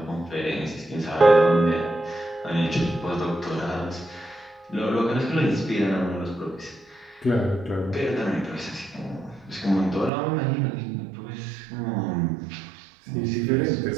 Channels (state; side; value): drops out; left; at 10.1 s